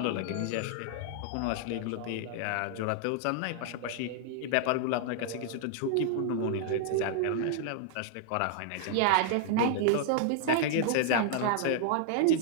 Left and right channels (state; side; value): different; both; correlation 0.00